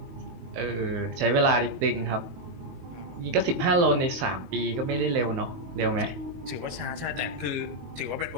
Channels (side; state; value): left; late; 20 ms